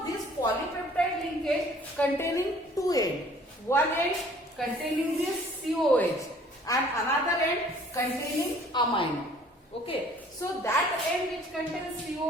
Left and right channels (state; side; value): normal; both; correlation 0.55